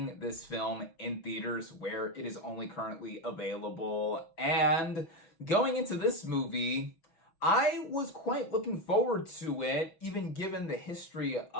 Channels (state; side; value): late; right; 6.1 ms